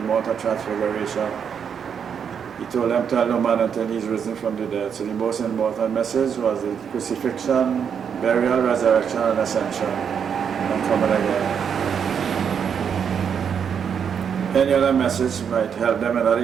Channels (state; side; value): quieter; left; 7.4 dB